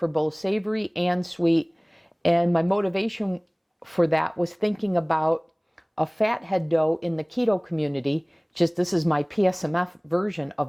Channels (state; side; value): identical; both; correlation 1.00